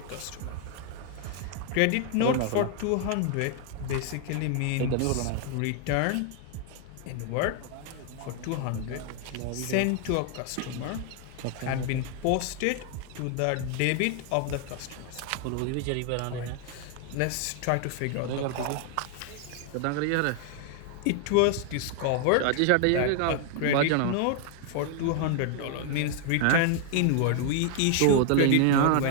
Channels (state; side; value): different; both; correlation 0.00